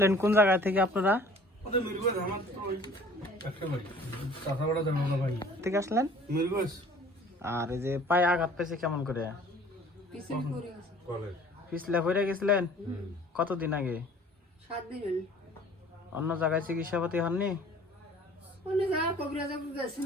কোন জায়গা থেকে আপনারা? থেকে আসলেন? আর এই যে পায়ে আঘাত পেয়েছে কেমন করে? পিছলে পড়ে গেছিলেন? কতদিন আগে? 7 দিন হলো। অন্য জায়গায় চিকিৎসাপাতি হননি?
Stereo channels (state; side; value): normal; both; correlation 0.50